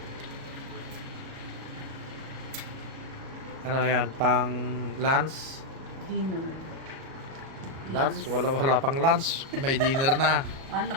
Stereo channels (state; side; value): late; left; 37 ms